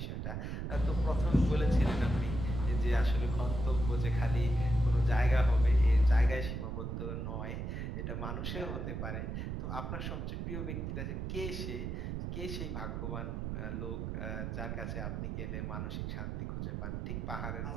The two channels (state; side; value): noise; right; rumble, 3 dB below the sound